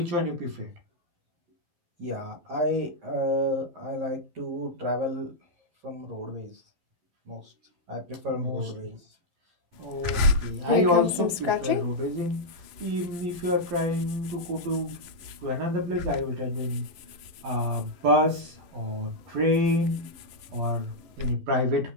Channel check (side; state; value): left; late; 11 ms